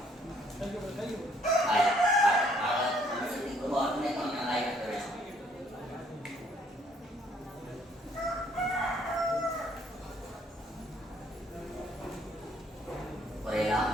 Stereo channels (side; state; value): both; normal; correlation 0.64